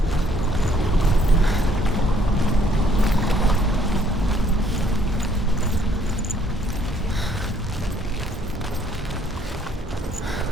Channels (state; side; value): normal; both; correlation 0.65